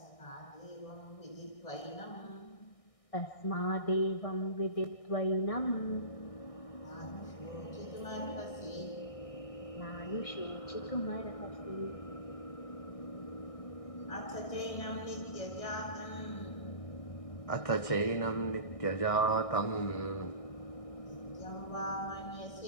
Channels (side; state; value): right; late; 1.6 ms